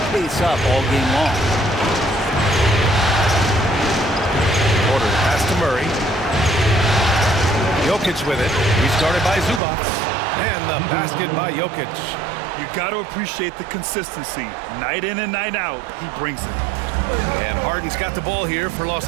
pace up all game long? Porter pass to Murray. Jokic with it. Restarted by Zubac. And the basket by Jokic. You got to appreciate the consistency. Night in and night out, he brings it. And Harden's got the ball here for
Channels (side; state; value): left; drops out; at 9.6 s